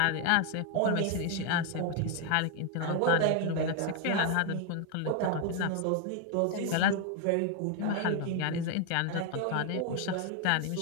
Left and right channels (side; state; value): both; different; correlation 0.00